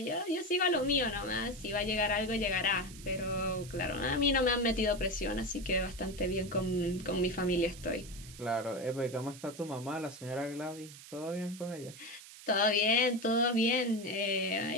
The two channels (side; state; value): right; noise; hiss, 17 dB below the sound